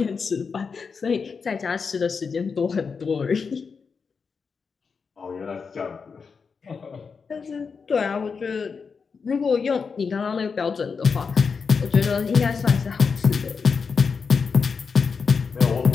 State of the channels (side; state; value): right; quieter; 5.4 dB